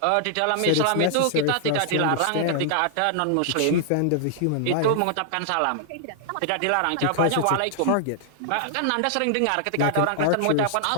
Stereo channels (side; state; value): both; different; correlation -0.01